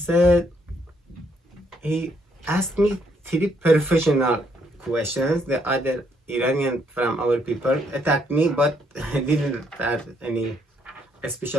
he asked me 3 professional questions. The other Iranian from our people attacked me, but didn't ask any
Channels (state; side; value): normal; both; correlation 0.72